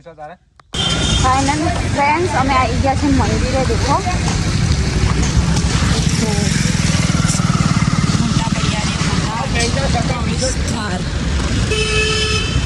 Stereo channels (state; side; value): identical; both; correlation 1.00